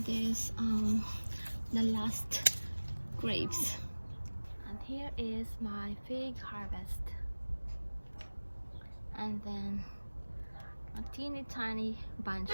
the last grapes. And here is my fig harvest. And then a teeny tiny bunch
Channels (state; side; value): inverted; both; correlation -1.00